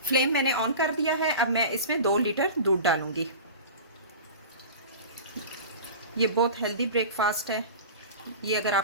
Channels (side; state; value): both; inverted; correlation -0.34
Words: फ्लेम मैंने ऑन कर दिया है। अब मैं इसमें 2 लीटर दूध डालूँगी। ये बहुत हेल्दी ब्रेकफास्ट है। ये अगर